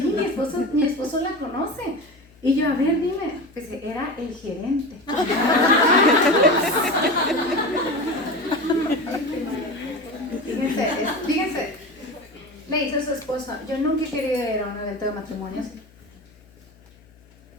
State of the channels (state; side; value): noise; left; hum, 28 dB below the sound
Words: mi esposo la conoce. Y yo, a ver, dime, pues era el gerente. Fíjense, le dice a su esposo, yo nunca he querido ir a un evento de matrimonios,